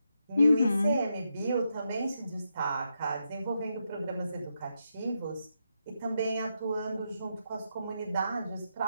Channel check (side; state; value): both; inverted; correlation -0.83